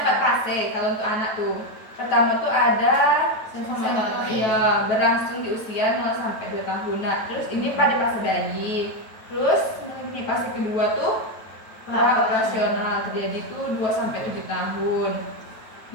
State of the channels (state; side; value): late; right; 9.2 ms